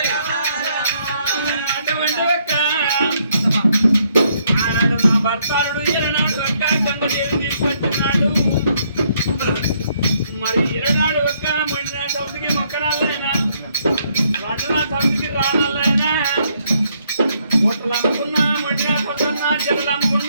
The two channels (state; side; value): inverted; both; correlation -0.71